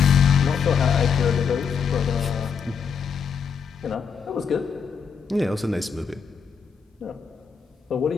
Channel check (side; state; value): right; quieter; 6.5 dB